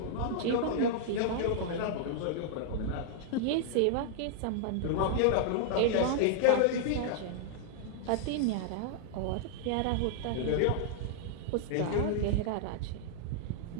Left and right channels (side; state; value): both; different; correlation -0.01